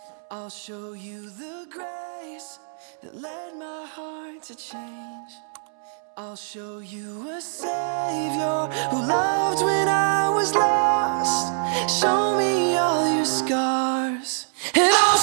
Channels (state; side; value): silent; left; 62 dB below the other